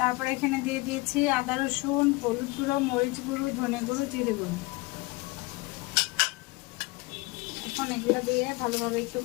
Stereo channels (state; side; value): quieter; right; 23.1 dB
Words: এখানে দিয়ে দিয়েছি আদা রসুন, হলুদ গুঁড়ো, মরিচ গুঁড়ো, ধনে গুঁড়ো, জিরে গুঁড়ো। এখন এগুলো দিয়ে ভালোভাবে একটু